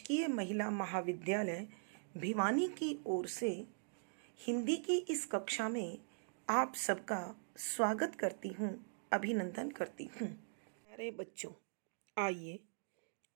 महिला महाविद्यालय भिवानी की ओर से हिंदी की इस कक्षा में आप सबका स्वागत करती हूँ, अभिनंदन करती हूँ। प्यारे बच्चों, आइए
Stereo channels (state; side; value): silent; left; digital silence